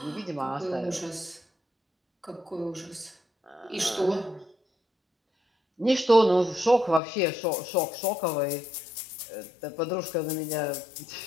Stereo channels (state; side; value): drops out; right; at 7.0 s